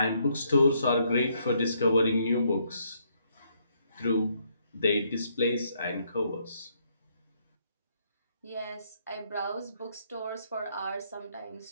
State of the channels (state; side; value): inverted; both; correlation -0.72